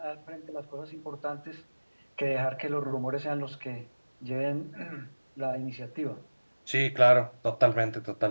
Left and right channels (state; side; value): inverted; both; correlation -1.00